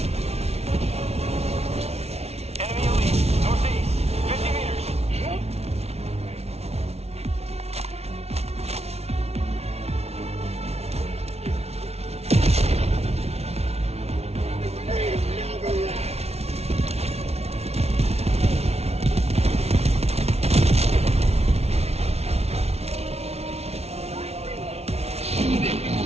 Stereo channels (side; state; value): left; late; 0.31 ms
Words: Enemy elite. Northeast. 50 meters.